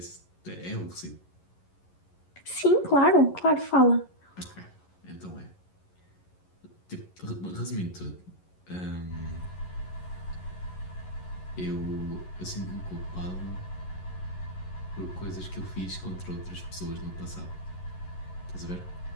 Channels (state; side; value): late; right; 11 ms